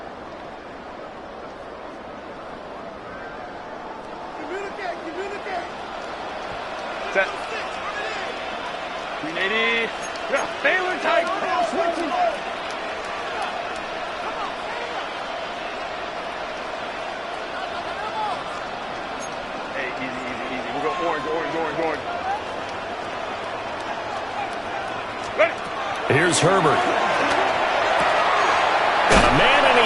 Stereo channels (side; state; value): both; identical; correlation 1.00